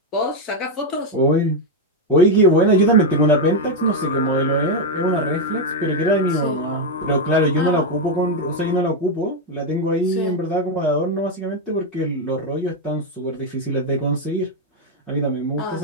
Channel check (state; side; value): normal; both; correlation 0.03